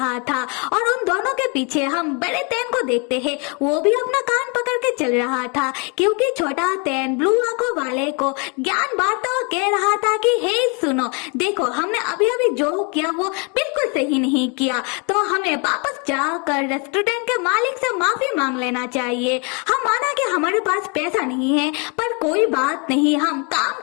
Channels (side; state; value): right; quieter; 34.2 dB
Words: था। और उन दोनों के पीछे हम बड़े तैन को देखते हैं, वो भी अपना कान पकड़ के चल रहा था क्योंकि छोटा तैन ब्लू आंखों वाले को ज्ञान बांटता हुआ कह रहा था कि हे सुनो, देखो हमने अभी अभी जो किया वो बिल्कुल सही नहीं किया, तो हमें वापस जाकर रेस्टोरेंट के मालिक से माफी मांग लेना चाहिए। हम माना कि हमारे पास पैसा नहीं है, पर कोई बात नहीं, हम काम